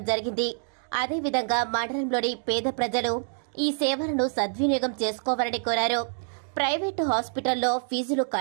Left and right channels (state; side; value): silent; left; digital silence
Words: జరిగింది. అదేవిధంగా మండలంలోని పేద ప్రజలు ఈ సేవలను సద్వినియోగం చేసుకోవాలని కోరారు. ప్రైవేటు హాస్పిటల్లో ఫీజులు